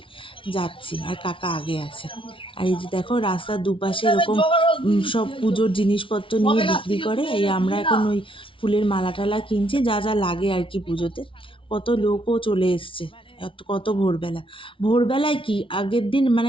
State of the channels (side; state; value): right; late; 0.25 ms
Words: যাচ্ছি, আর কাকা আগে আছে। আর এই যে দেখো রাস্তার দুপাশে এরকম সব পুজোর জিনিসপত্র নিয়ে বিক্রি করে। এই আমরা এখন ওই ফুলের মালা টালা কিনছি, যা যা লাগে আর কি পুজোতে। কত লোকও চলে এসছে, কত ভোরবেলা। ভোরবেলায় কি আগের দিন